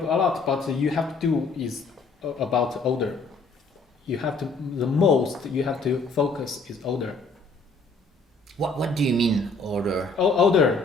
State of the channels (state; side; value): quieter; right; 3.6 dB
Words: a lot, but you have to do is about odor. You have to focus is odor. What do you mean odor?